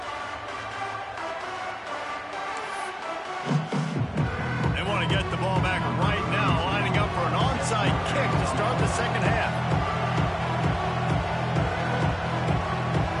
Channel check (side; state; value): both; identical; correlation 1.00